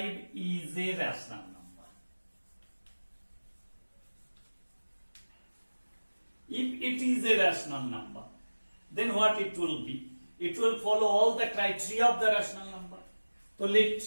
is a rational number. If it is a rational number, then what it will be? It will follow all the criteria of the rational number. So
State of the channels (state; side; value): inverted; both; correlation -1.00